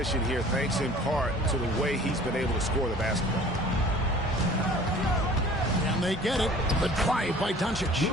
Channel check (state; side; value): normal; both; correlation 0.48